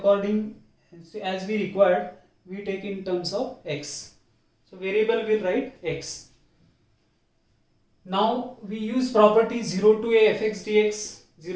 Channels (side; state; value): both; identical; correlation 1.00